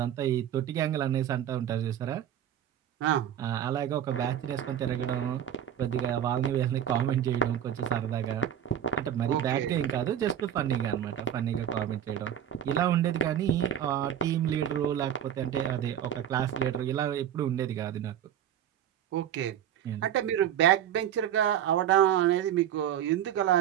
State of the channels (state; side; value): quieter; left; 10.1 dB